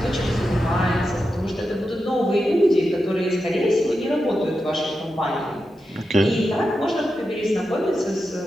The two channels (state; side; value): normal; both; correlation 0.89